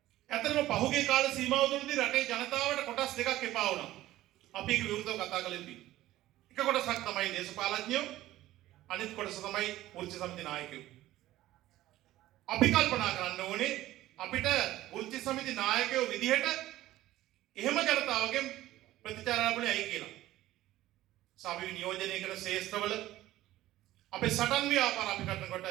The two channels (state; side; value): quieter; left; 15.3 dB